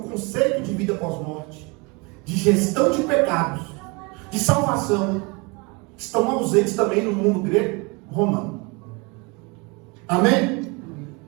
de vida pós-morte, de gestão de pecados, de salvação, estão ausentes também no mundo grego romano. Amém?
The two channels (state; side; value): quieter; left; 28.8 dB